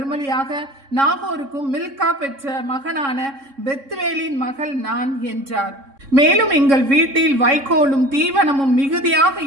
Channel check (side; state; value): left; late; 3.6 ms